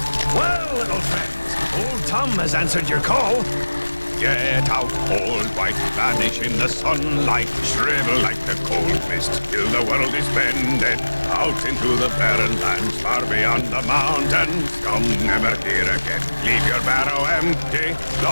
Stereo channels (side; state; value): both; inverted; correlation -1.00